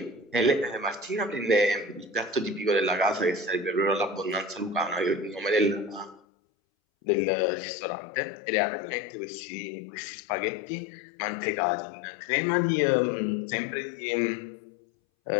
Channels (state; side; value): drops out; right; at 6.2 s